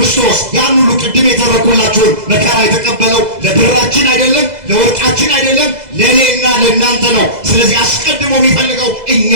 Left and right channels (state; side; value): late; left; 2.0 ms